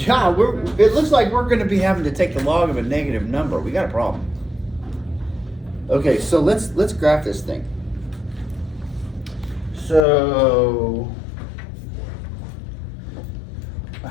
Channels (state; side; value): drops out; right; at 10.1 s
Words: it looks like we're going to be having to take the log of a negative number. We got a problem. Okay, so let's graph this thing. So,